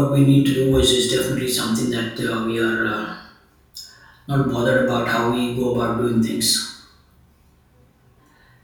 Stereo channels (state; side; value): identical; both; correlation 1.00